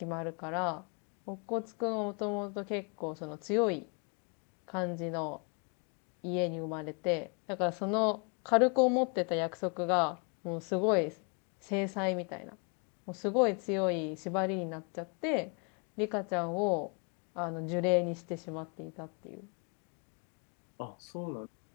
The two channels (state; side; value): quieter; right; 36.3 dB